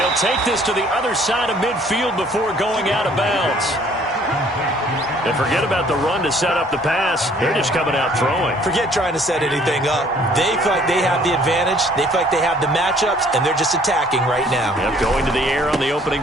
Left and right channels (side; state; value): both; normal; correlation 0.58